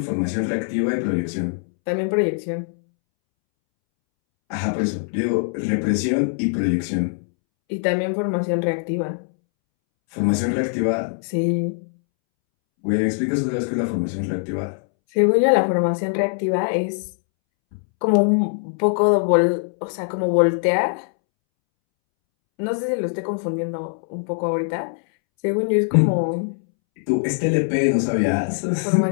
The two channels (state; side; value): silent; right; 64 dB below the other